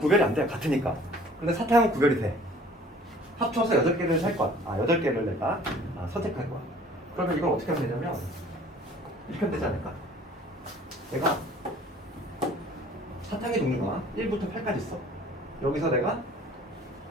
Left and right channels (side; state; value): both; normal; correlation 0.51